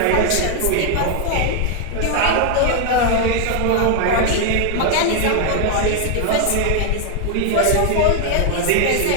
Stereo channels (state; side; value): different; both; correlation 0.00